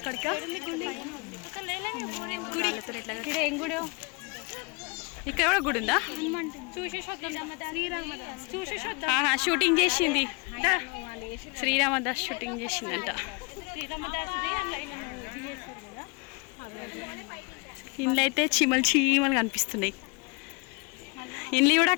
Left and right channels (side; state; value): right; quieter; 30.9 dB